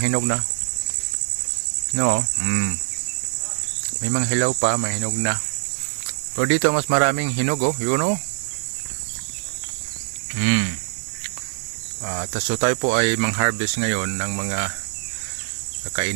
hinog na. No? May mga hilaw pa, may hinog na. Pero dito mas maraming hinog oh, yun oh. So tayo po ay mang-harvest ngayon ng mga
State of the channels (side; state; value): left; silent; digital silence